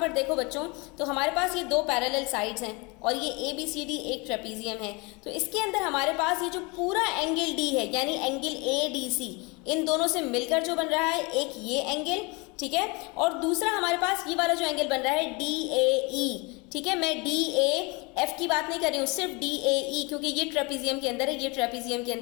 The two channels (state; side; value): quieter; right; 28.0 dB